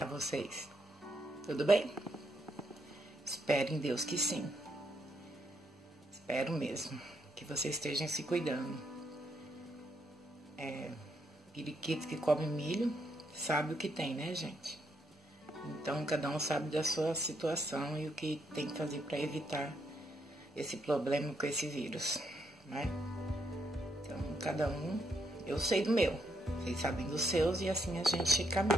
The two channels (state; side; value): normal; both; correlation 0.77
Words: vocês? Tudo bem? Espero em Deus que sim. Espero mesmo que vocês estejam se cuidando. Periquito que come milho sabe o que tem, né, gente? Então, cada um sabe da sua situação e o que tem que fazer para evitar esse problema com esse vírus, né? Então, cada um, eu sei do meu, vocês sabem dos seus e assim a gente